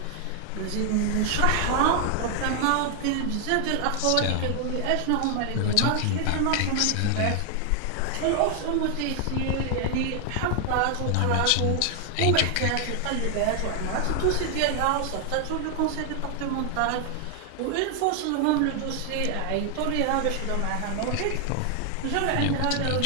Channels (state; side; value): different; both; correlation 0.00